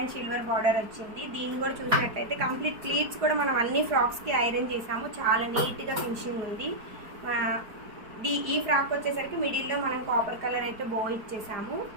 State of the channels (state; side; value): late; left; 4.5 ms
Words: సిల్వర్ బార్డర్ వచ్చింది. దీన్ని కూడా చూసినట్లయితే కంప్లీట్ ప్లీట్స్ కూడా మనం అన్ని ఫ్రాక్స్కి ఐరన్ చేసాము. చాలా నీట్గా ఫినిషింగ్ ఉంది. ఈ ఫ్రాక్ వచ్చేసరికి మిడిల్లో మనం కాపర్ కలర్ అయితే బో ఇచ్చేసాము.